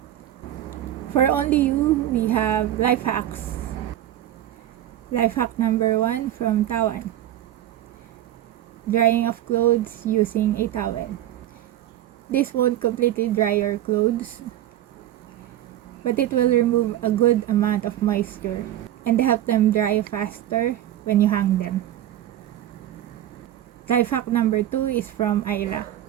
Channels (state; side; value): quieter; left; 12.6 dB